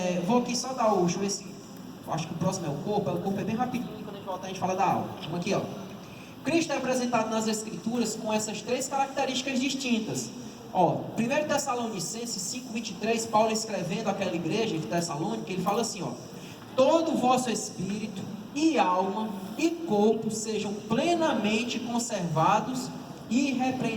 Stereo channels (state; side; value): identical; both; correlation 1.00